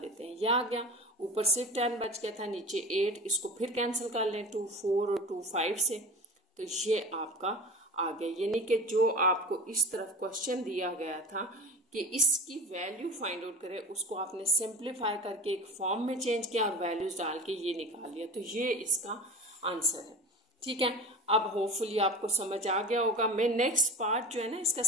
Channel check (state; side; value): normal; both; correlation 0.33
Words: हैं। यह आ गया, ऊपर सिर्फ 10 बच गया था, नीचे 8, इसको फिर कैंसिल कर लें 2 4 और 2 5 से, तो ये आपका आ गया। यानी कि जो आपको इस तरफ क्वेश्चन दिया गया था कि इसकी वैल्यू फाइंड आउट करें, उसको आपने सिंप्लीफाई करके एक फॉर्म में चेंज किया और वैल्यूज डाल के ये निकाल लिया। तो ये इसका आंसर है, ठीक है। अब होपफुली आपको समझ आ गया होगा। मैं नेक्स्ट पार्ट जो है ना इसका